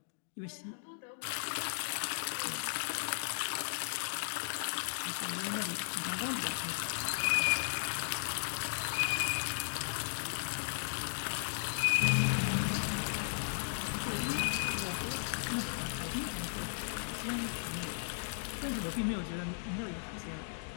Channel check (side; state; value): right; silent; digital silence